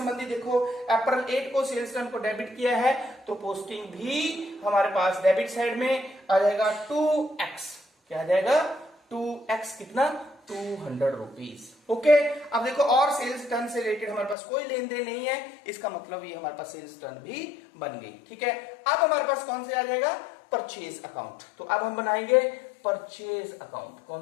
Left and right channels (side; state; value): right; drops out; at 14.4 s